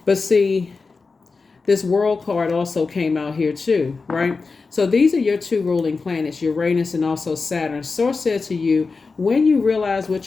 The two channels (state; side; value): quieter; right; 4.3 dB